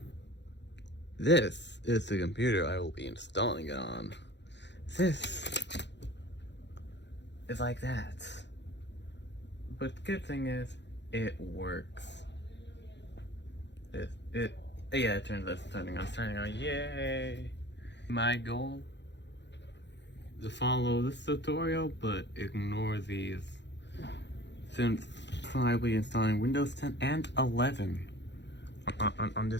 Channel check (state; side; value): late; right; 0.51 ms